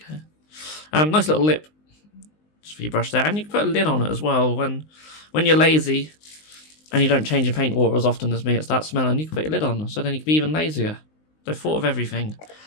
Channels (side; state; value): right; late; 19 ms